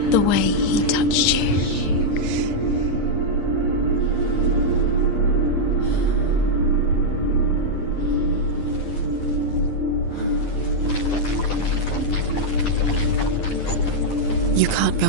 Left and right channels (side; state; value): right; late; 9.8 ms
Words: the way he touched you? You can't go